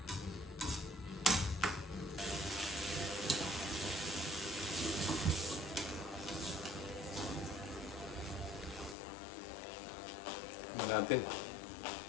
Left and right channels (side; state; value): right; drops out; at 9.0 s